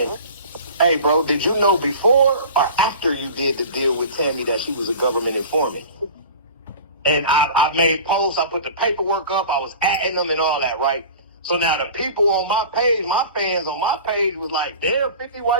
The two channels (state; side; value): inverted; both; correlation -0.39